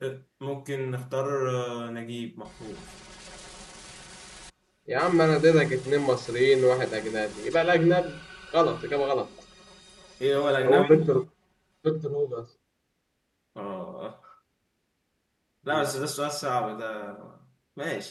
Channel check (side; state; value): both; identical; correlation 1.00